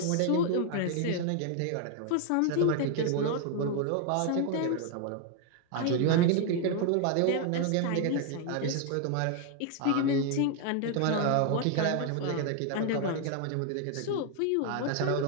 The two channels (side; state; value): both; different; correlation 0.00